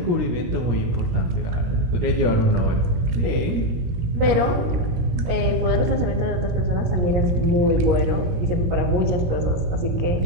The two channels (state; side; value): late; left; 18 ms